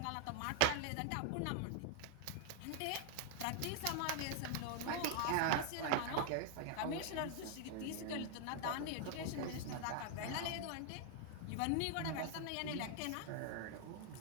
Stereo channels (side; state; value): both; different; correlation 0.00